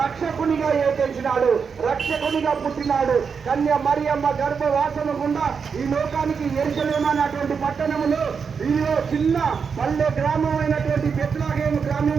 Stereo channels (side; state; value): left; quieter; 6.0 dB